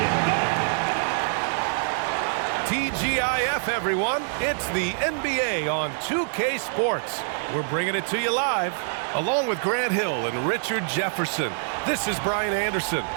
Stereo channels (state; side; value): silent; left; digital silence